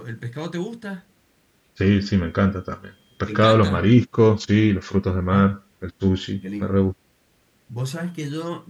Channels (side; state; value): both; identical; correlation 1.00